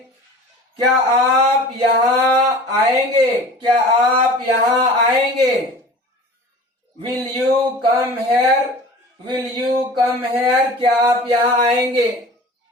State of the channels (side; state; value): both; normal; correlation 0.40